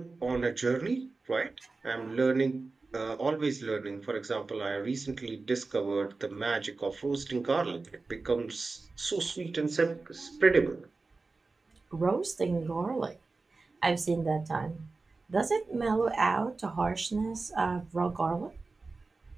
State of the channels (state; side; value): quieter; left; 3.8 dB